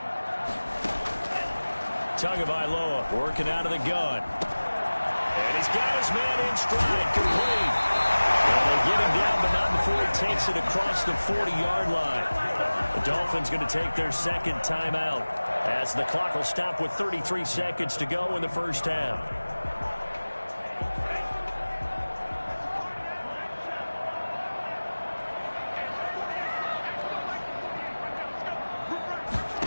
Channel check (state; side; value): inverted; both; correlation -1.00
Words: Tagovailoa working out of the gun. And he's got his man in stride, complete. And they get him down, but not before he takes it across the 40-yard line. The Dolphins going to take their 2nd timeout as the clock will stop with 33 seconds to go in the first half.